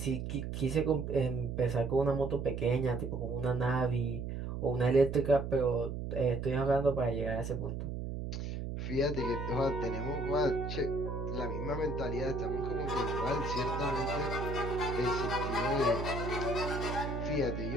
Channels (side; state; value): right; noise; hum, 5 dB below the sound